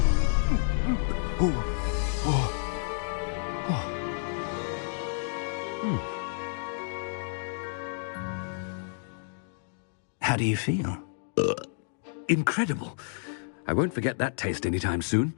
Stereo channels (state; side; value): silent; right; digital silence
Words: How do you feel? Incredible. I won't forget that taste anytime soon.